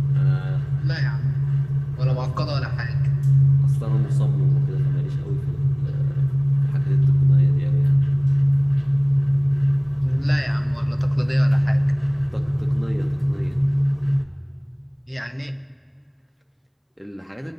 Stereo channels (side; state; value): both; identical; correlation 1.00